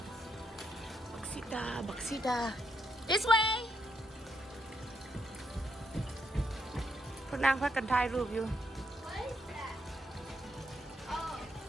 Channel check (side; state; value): both; normal; correlation 0.78